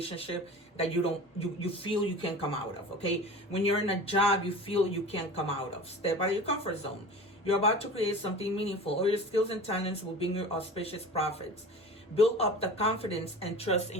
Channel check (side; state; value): both; normal; correlation 0.36